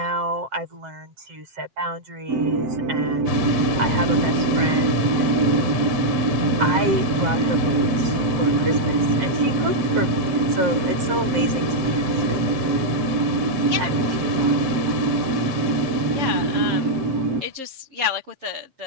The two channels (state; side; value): late; left; 7.5 ms